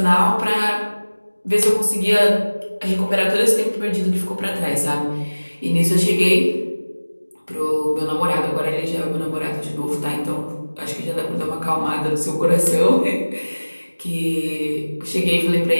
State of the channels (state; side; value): inverted; both; correlation -1.00